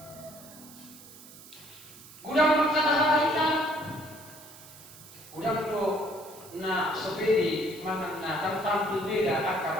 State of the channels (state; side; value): noise; right; hiss, 19 dB below the sound